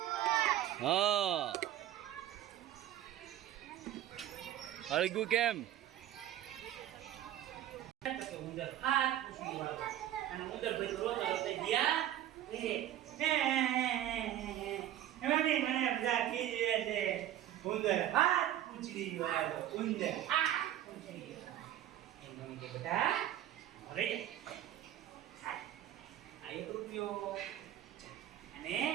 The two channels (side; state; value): left; quieter; 12.4 dB